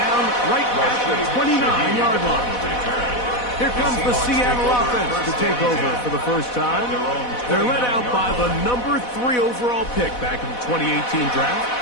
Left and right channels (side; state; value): right; late; 4.1 ms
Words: right at the 29-yard line. Here comes the Seattle offense to take over for the first time. They're led out by the number 3 overall pick back in the 2018 draft.